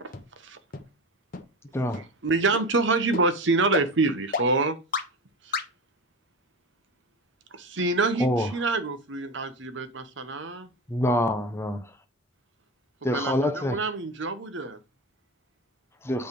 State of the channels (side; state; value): both; normal; correlation 0.26